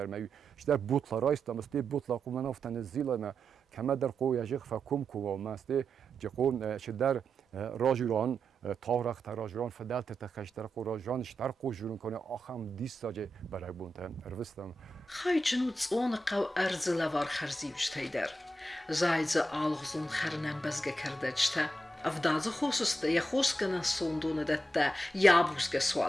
ما در بوتلا رایستم است بوتلا قومن افتن زیل ما کما در قوی اجق فکم کو ما است جقون شدر راجران تارخ راجران فدالت تخشتر قو راجران شتر قو جورن کنه آخم دیستاجه برای بونتن اروستم خای جنوت اون قو ارز لوار خرزیوش تیدر زایز آلغزون خرنم بزگه کرده جتا افدازı خوسسته یا خوس کنن سوندونه دته یا بوسگه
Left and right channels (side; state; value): both; normal; correlation 0.87